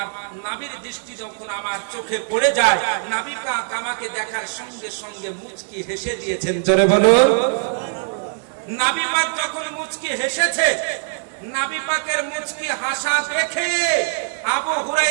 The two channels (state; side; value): silent; left; digital silence